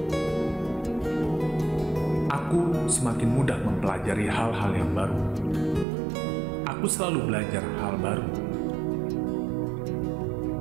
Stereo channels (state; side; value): drops out; left; at 5.9 s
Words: Aku semakin mudah mempelajari hal-hal yang baru. Aku selalu belajar hal baru.